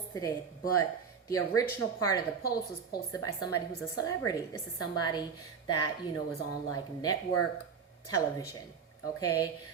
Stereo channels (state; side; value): quieter; left; 6.3 dB